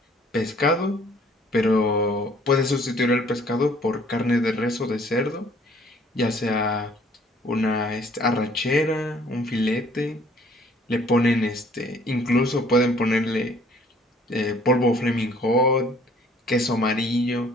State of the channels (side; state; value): both; normal; correlation 0.58